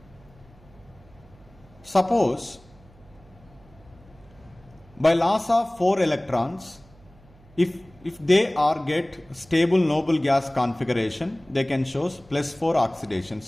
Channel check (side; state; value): right; noise; hum, 26 dB below the sound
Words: Suppose by loss of 4 electrons, if they are get stable noble gas configuration, they can show +4 oxidation